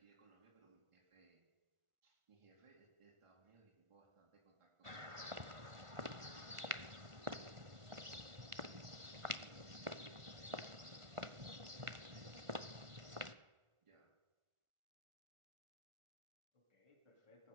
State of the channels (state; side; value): late; left; 1.4 ms